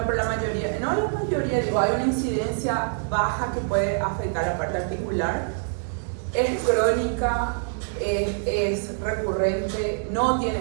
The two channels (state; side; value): silent; left; 62 dB below the other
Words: pero la mayoría, no la mayoría, digo, hay una incidencia baja que puede afectar la parte articular. Es crónica, es recurrente, no